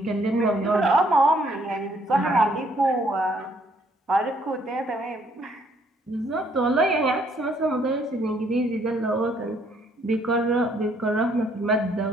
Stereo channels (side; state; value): both; normal; correlation 0.67